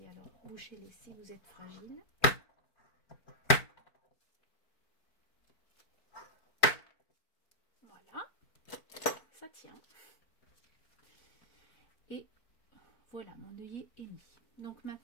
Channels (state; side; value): late; right; 4.5 ms